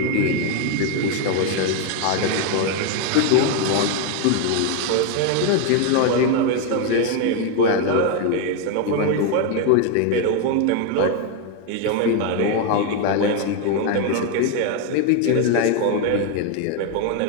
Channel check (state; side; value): different; both; correlation 0.01